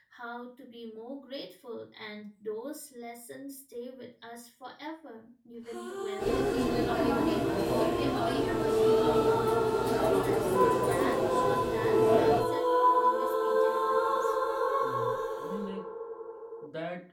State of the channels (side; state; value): both; identical; correlation 1.00